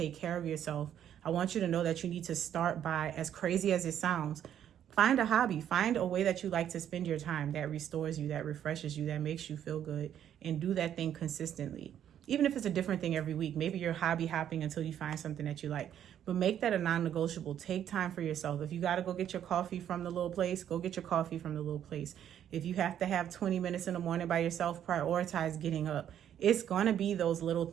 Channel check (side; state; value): left; quieter; 10.1 dB